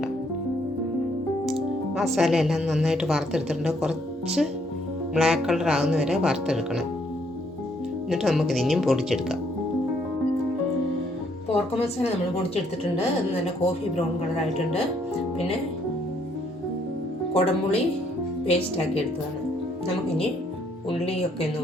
മസാല എല്ലാം നന്നായിട്ട് വറുത്തെടുത്തിട്ടുണ്ട്. കുറച്ച് ബ്ലാക്ക് കളർ ആകുന്ന വരെ വറുത്തെടുക്കണം. എന്നിട്ട് നമുക്കിത് ഇനിയും പൊടിച്ചെടുക്കാം. പോർക്ക് മസാല നമ്മൾ പൊടിച്ചെടുത്തിട്ടുണ്ട്. അത് നല്ല കോഫി ബ്രൗൺ കളറായിട്ടുണ്ട്. പിന്നെ കുടംപുളി പേസ്റ്റാക്കി എടുത്തതാണ്. നമുക്കിനി ഉള്ളിയൊക്കെ ഒന്ന്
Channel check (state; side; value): normal; both; correlation 0.69